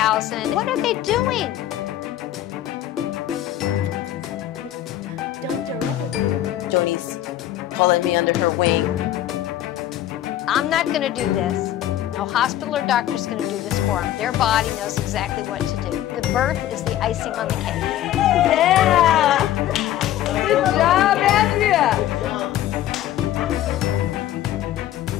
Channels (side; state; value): right; quieter; 12.7 dB